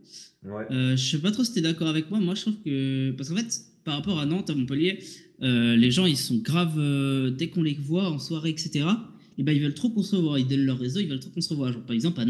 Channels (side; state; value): both; identical; correlation 1.00